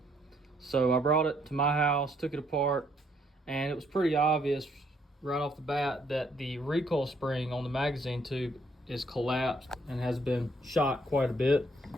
So I brought it to my house, took it apart, and it was pretty obvious right off the bat that the recoil spring on the magazine tube is collapsed and has been shot quite a bit.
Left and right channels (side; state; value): both; normal; correlation 0.69